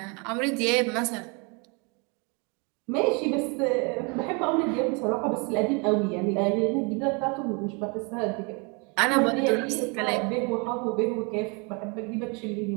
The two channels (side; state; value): left; quieter; 32.4 dB